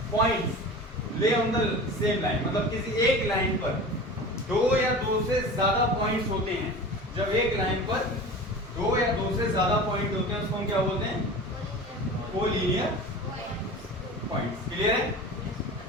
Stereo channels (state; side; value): normal; both; correlation 0.35